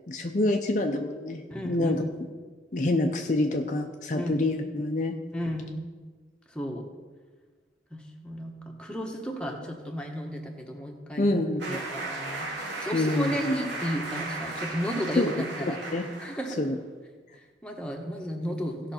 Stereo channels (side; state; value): both; normal; correlation 0.65